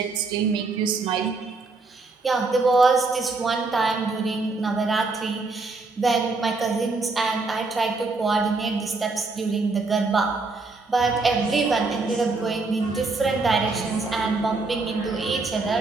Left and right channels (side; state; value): left; quieter; 3.7 dB